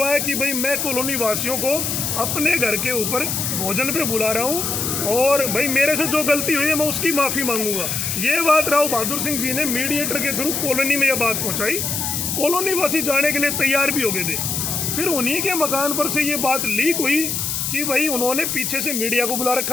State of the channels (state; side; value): noise; left; hiss, 1 dB below the sound